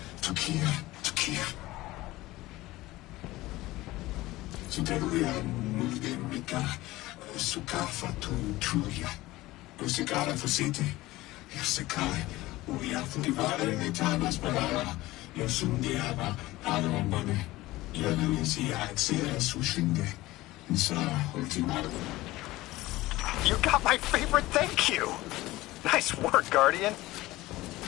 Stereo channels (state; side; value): quieter; right; 18.3 dB